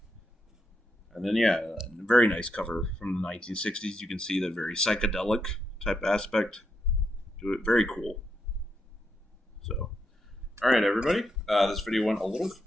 And then, yeah, a very nice cover from the 1960s. You can see the very psychedelic type aspect to it. Very cool. So, all right, everybody. This video went a little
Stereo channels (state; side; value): normal; both; correlation 0.81